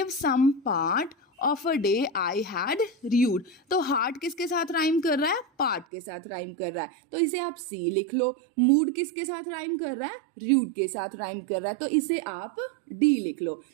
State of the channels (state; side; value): drops out; left; at 5.9 s